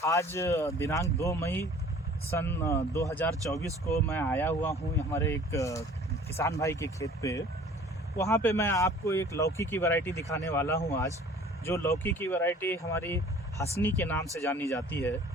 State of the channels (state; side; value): normal; both; correlation 0.49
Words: आज दिनांक 2 मई सन 2024 को मैं आया हुआ हूँ हमारे एक किसान भाई के खेत पे। वहाँ पे मैं आपको एक लौकी की वैरायटी दिखाने वाला हूँ आज। जो लौकी की वैरायटी हमारी हसनी के नाम से जानी जाती है,